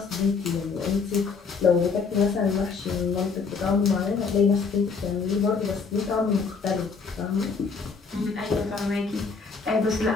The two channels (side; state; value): right; quieter; 5.1 dB